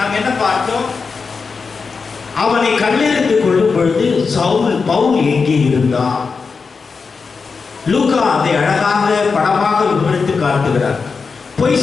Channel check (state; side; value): quieter; right; 4.9 dB